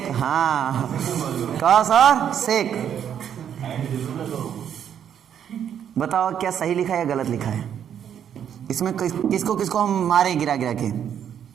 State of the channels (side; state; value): left; quieter; 9.0 dB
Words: हाँ, कॉस और सेक। बताओ क्या सही लिखा है या गलत लिखा है? इसमें किसको किसको हम मारे गिरा गिरा के?